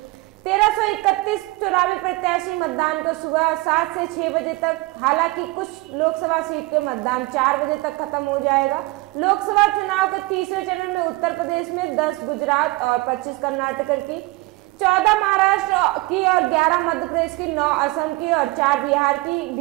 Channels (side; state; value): left; quieter; 22.6 dB